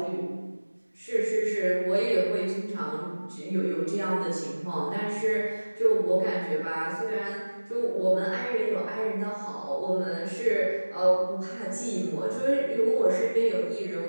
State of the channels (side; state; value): both; inverted; correlation -1.00